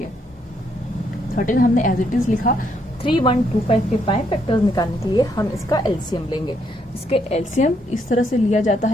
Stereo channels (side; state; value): both; normal; correlation 0.74